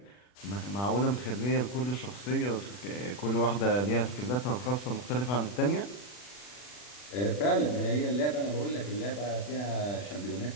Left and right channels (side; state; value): right; late; 40 ms